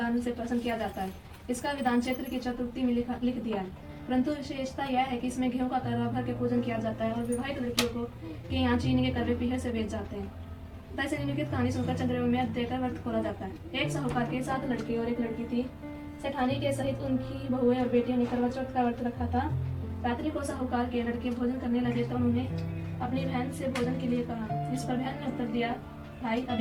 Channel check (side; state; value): both; identical; correlation 1.00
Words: से प्रसन्न किया जाता है। इसका विधान चैत्र की चतुर्थी में लिख दिया है, परंतु विशेषता यह है कि इसमें गेहूं का करवा भर के पूजन किया जाता है और विवाहित लड़कियों को के यहाँ चीनी के करवे पीढ़े से बेच जाते हैं। तैसे निम्नलिखित कहानी सुनकर चंद्रमा में देकर व्रत खोला जाता है। एक साहूकार के 7 लड़के और एक लड़की थी। सेठानी के सहित उनकी बहुएं और बेटियों ने करवा चौथ का व्रत रखा था। रात्रि को साहूकार के लड़के भोजन करने लगे तो उन्होंने अपनी बहन से भोजन के लिए कहा। इस पर बहन ने उत्तर दिया, भाई